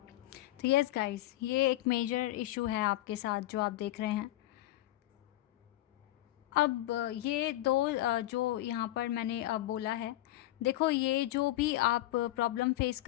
तो यस गाइस, ये एक मेजर इशू है आपके साथ जो आप देख रहे हैं। अब ये दो जो यहाँ पर मैंने बोला है, देखो ये जो भी आप प्रॉब्लम फेस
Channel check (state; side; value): quieter; right; 15.5 dB